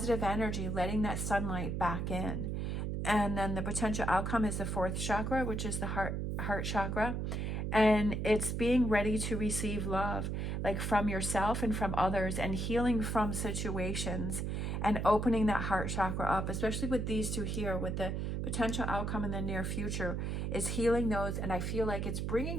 energy, letting that sunlight back in. And then the potential outcome is the fourth chakra, which is the heart chakra. And it's being ready to receive love, like from yourself and from others, and healing from situations, and opening that heart chakra up, especially with these two here, with the potential outcome in the near future, is healing those. And I feel like it's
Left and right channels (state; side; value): noise; right; hum, 1 dB below the sound